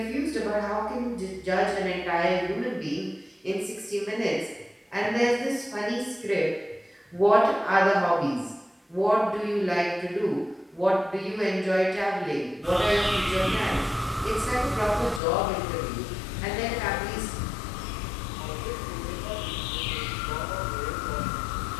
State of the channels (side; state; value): right; drops out; at 15.2 s